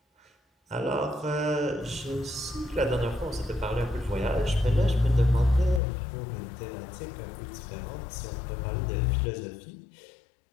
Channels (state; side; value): drops out; right; at 5.8 s